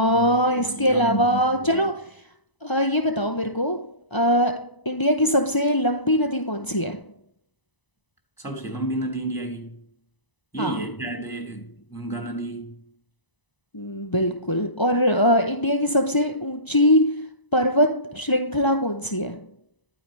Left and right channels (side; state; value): right; late; 1.0 ms